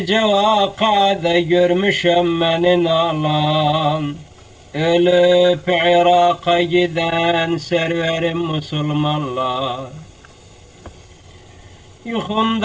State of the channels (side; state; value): both; identical; correlation 1.00